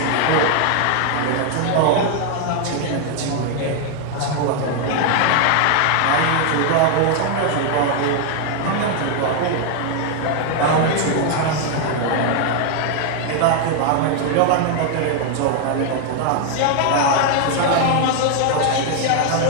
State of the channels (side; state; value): both; different; correlation 0.00